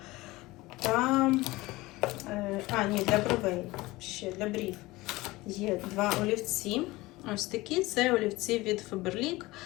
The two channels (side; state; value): right; quieter; 20.2 dB